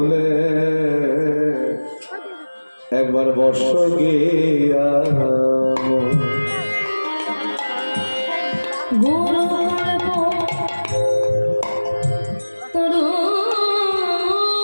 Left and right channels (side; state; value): both; inverted; correlation -1.00